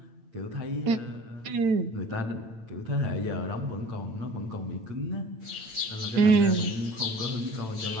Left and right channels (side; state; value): left; late; 9.0 ms